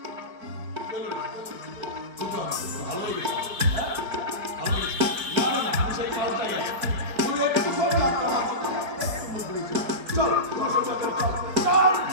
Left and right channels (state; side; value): late; left; 4.5 ms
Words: ভালো লেগেছে? হ্যাঁ? ভালো লেগেছে? না, না, না, আমি সেই পাল্টাই আছি। তুমি একটু করে যাত্রা মারছো, একটু মুখ ঘুরেছো। চল, তোমার সঙ্গে চল, চল।